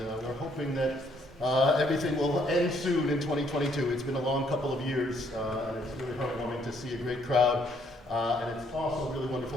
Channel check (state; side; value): normal; both; correlation 0.68